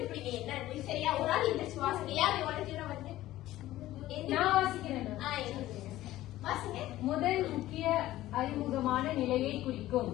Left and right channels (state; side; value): quieter; right; 15.2 dB